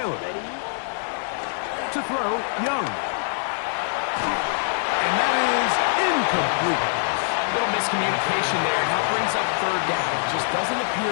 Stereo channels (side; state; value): right; silent; digital silence